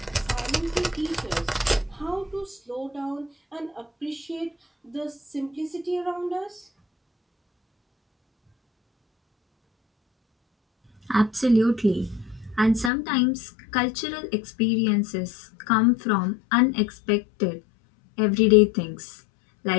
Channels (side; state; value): right; drops out; at 12.9 s